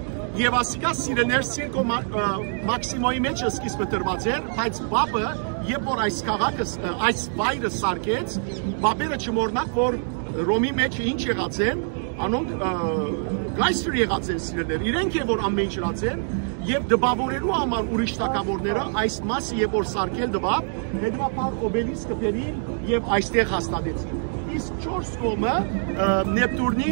եւ ասիկա սիրելներ Սիրկո Մաքսիմոյի մեջ սկիզբը տրված էր, բայց բաբը երբ որ այս քաղաքը այս վայրը սարքեց, բաբերը չմոռնակ որ Ռոմի մեջ ինչ եղած են, անոնք գայսր եղած են սիրելներ, իրենք է որ ամեն ինչ եղած են եւ դպավորելու համար ուրիշ թակավորները այս մասը երբ որ սարքել դպավ, հետո օբելիսկը բերին եւ այստեղ հաստատեցին։ Իսկ 4 կողմը Նեպտուրնի,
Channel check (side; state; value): left; silent; 62 dB below the other